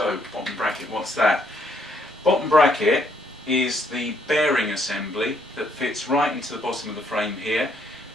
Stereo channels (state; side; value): normal; both; correlation 0.70